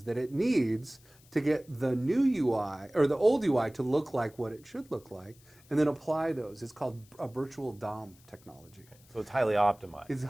that it needs to get the new UI, or the old UI, to look like what it should look like, and then apply those. It's called a virtual DOM technology. So it's highly optimized. It's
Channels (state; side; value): noise; left; hiss, 27 dB below the sound